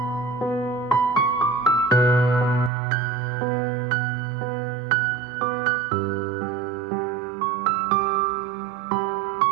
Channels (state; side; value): drops out; left; at 2.7 s